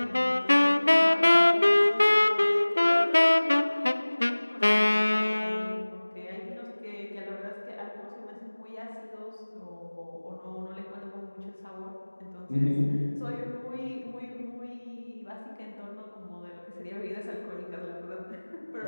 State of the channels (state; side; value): inverted; both; correlation -1.00